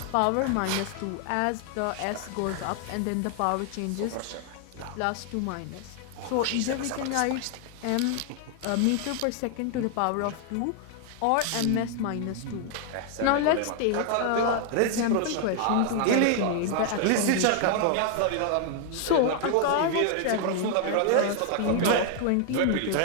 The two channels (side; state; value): both; different; correlation 0.00